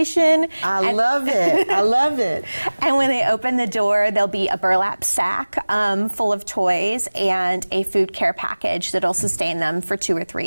I love it. I love it. And when they open the door, there'll be a burlap sack full of toys and a food care package that'll sustain them for 2 or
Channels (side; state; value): both; inverted; correlation -1.00